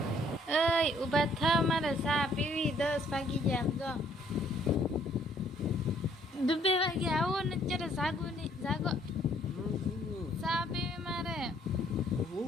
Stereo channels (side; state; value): both; normal; correlation 0.64